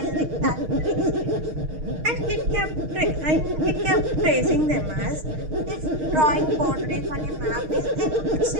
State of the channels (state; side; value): late; left; 6.4 ms